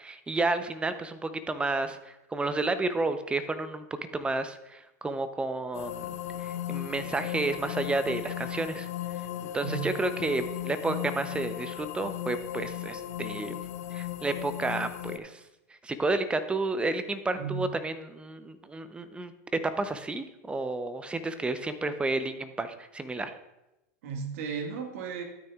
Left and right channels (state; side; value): normal; both; correlation 0.62